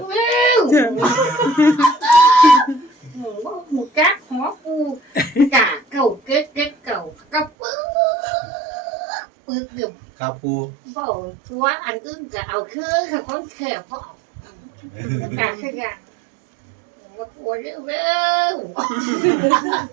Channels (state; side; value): drops out; left; at 7.5 s